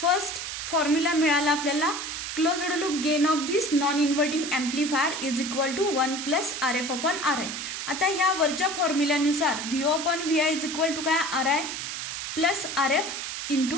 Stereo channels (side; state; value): right; noise; hiss, 5 dB below the sound